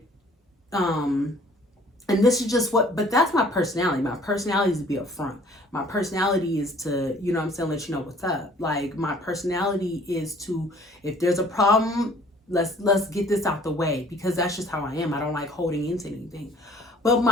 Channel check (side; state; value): both; normal; correlation 0.55